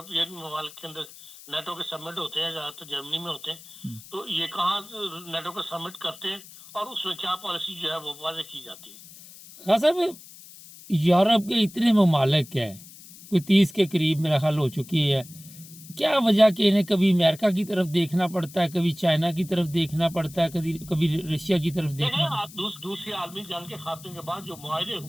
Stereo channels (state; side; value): noise; left; hiss, 19 dB below the sound